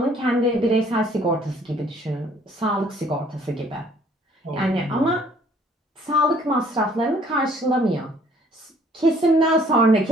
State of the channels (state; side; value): normal; both; correlation 0.59